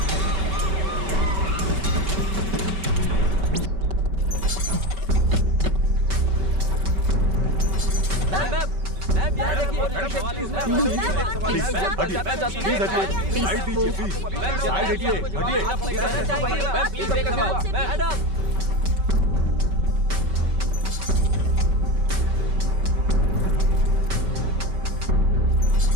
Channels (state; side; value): late; left; 5.2 ms